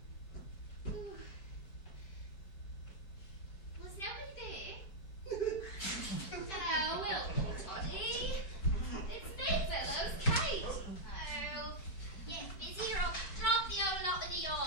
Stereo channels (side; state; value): right; late; 5.1 ms